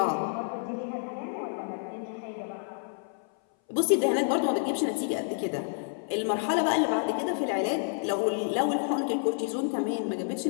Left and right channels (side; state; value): right; silent; 57 dB below the other